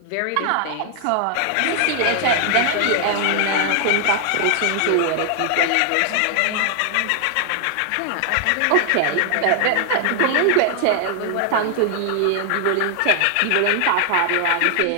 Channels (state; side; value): different; both; correlation 0.00